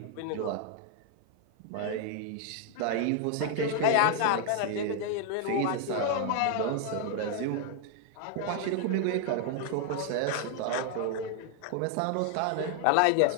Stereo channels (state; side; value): different; both; correlation 0.00